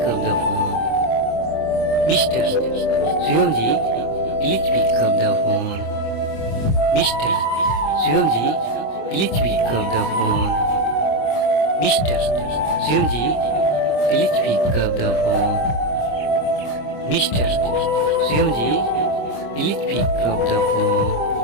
up the phone. Mr. Shivamji, please pick up the phone. Mr. Shivamji, please pick up the phone. Mr. Shivamji, please pick up the phone. Mr. Shivamji, please pick up the phone.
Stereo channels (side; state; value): right; late; 26 ms